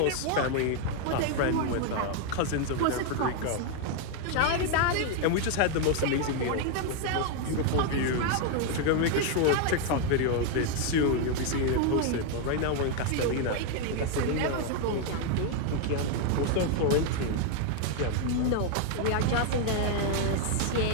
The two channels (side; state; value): both; different; correlation 0.00